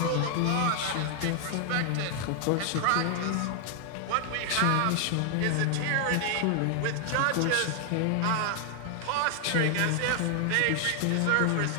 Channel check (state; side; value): different; both; correlation 0.00